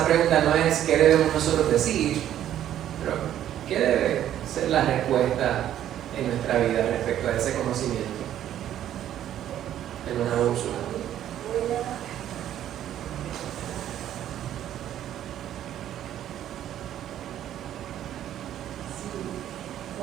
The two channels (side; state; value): left; quieter; 11.4 dB